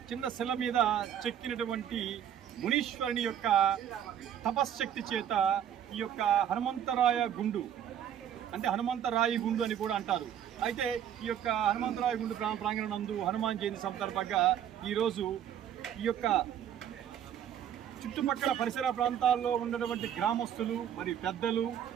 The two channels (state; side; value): quieter; left; 9.7 dB